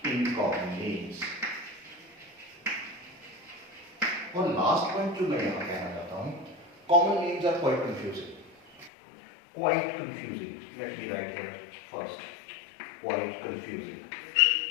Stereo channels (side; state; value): right; drops out; at 8.9 s